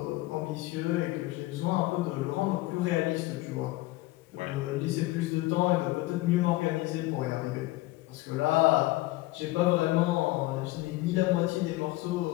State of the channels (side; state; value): right; quieter; 19.1 dB